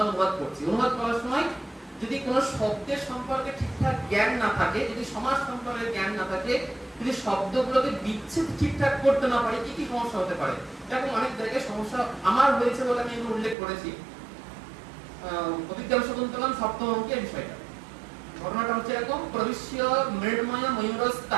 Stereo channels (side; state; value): left; drops out; at 13.6 s